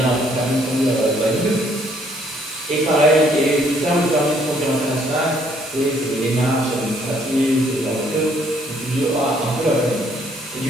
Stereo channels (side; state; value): both; normal; correlation 0.66